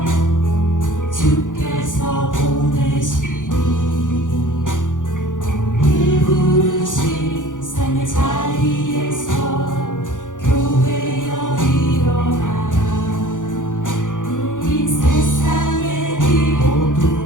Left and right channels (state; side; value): late; right; 0.87 ms